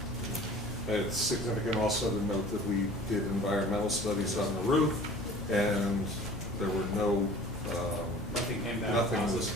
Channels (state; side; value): normal; both; correlation 0.45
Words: It's significant also to note that we did environmental studies on the roof, and there were no Nothing came back. nothing was